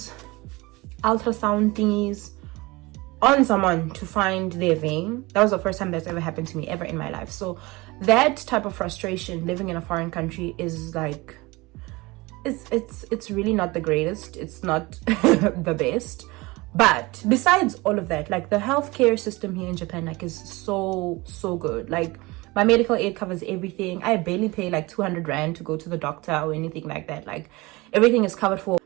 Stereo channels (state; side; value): quieter; left; 22.8 dB